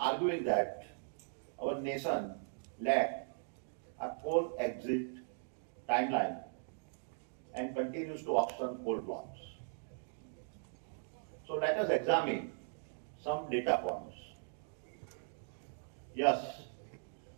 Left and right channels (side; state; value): left; silent; digital silence